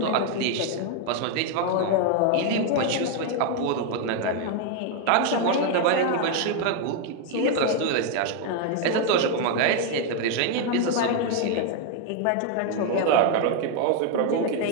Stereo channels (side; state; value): both; different; correlation 0.01